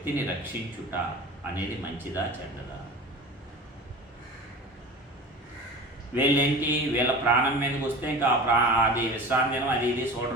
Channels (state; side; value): normal; both; correlation 0.35